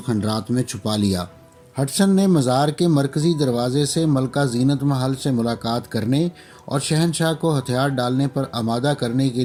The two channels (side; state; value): both; identical; correlation 1.00